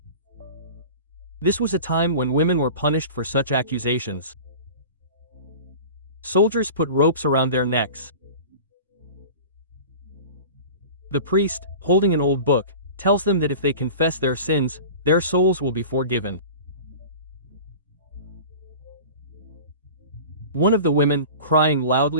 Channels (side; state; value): both; inverted; correlation -0.37